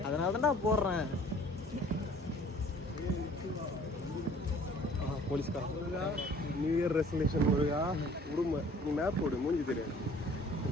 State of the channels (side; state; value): both; normal; correlation 0.52